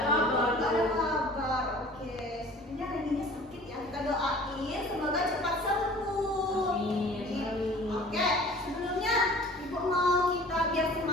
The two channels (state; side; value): normal; both; correlation 0.46